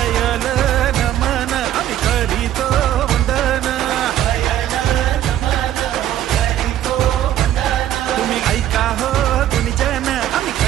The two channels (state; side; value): quieter; left; 11.9 dB